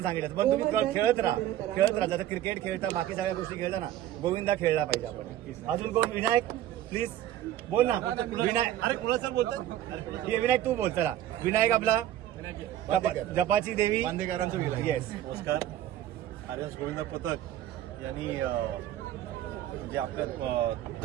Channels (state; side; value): quieter; left; 12.6 dB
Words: सांगितलं, पण तुम्ही खेळत राहा. जसं क्रिकेट खेळता, बाकी सगळ्या गोष्टी खेळता ना, गोविंदा खेळला पाहिजे आपण. अजून कोण? विनायक प्लीज बोल ना. विनायक, अरे कुणाचं बोलतो? विनायक तू बोल. चला विनायक आपला जपाची देवी बांदेकरांचं विनायक. येस, नमस्कार. आर्यन गोविंदा पथक यांनी जे आपल्या